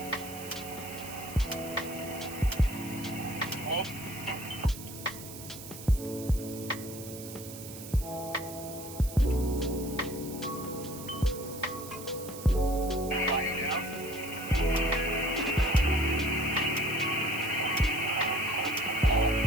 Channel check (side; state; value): right; noise; hiss, 13 dB below the sound